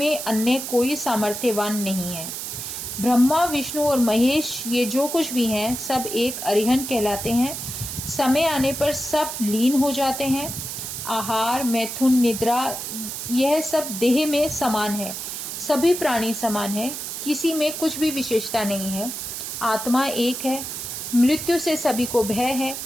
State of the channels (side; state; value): right; noise; hiss, 6 dB below the sound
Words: अन्य कोई सामर्थ्यवान नहीं है। ब्रह्मा, विष्णु और महेश ये जो कुछ भी हैं, सब एक अरिहन कहलाते हैं। समय आने पर सब लीन हो जाते हैं। आहार, मैथुन, निद्रा यह सब देह में समान है। सभी प्राणी समान है, किसी में कुछ भी विशेषता नहीं है। आत्मा एक है। मृत्यु से सभी को भय है।